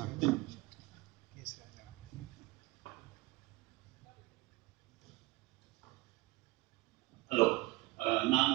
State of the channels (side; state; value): left; quieter; 21.5 dB